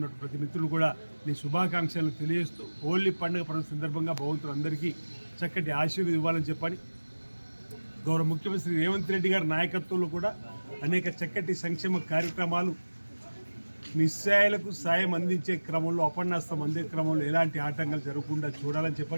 ప్రతి మిత్రులు కూడా నీ శుభాకాంక్షలు తెలియజేస్తూ హోలీ పండుగ పర్వ సందర్భంగా భగవంతుడు అందరికీ చక్కటి ఆశీర్వాదం ఇవ్వాలని చెప్పని గౌరవ ముఖ్యమంత్రి రేవంత్ రెడ్డి గారి నాయకత్వంలో కూడా అనేక చక్కటి సంక్షేమ కార్యక్రమాలు నిస్సాయాలకు సాయం అందించే క్రమంలో, అపన్నాస్తం అందే క్రమంలో ఎలాంటి ఆటంకాలు జరగకుండా చూడాలని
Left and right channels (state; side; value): inverted; both; correlation -1.00